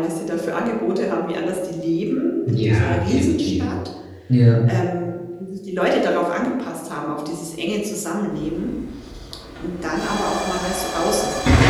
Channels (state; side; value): identical; both; correlation 1.00